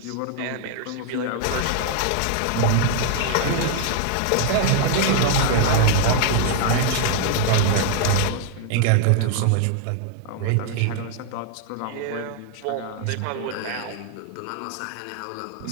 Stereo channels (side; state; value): both; different; correlation 0.00